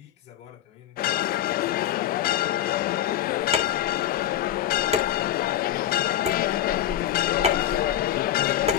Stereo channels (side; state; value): right; quieter; 11.8 dB